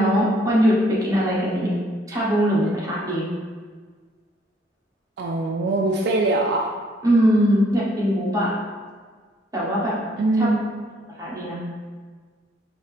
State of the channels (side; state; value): both; normal; correlation 0.65